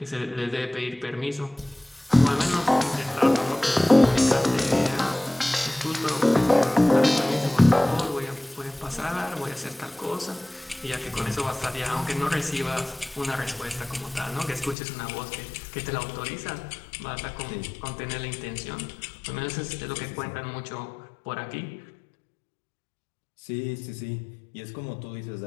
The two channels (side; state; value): right; drops out; at 14.8 s